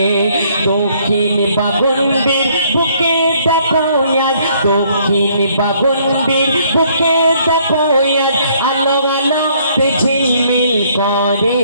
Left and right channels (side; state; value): both; inverted; correlation -0.64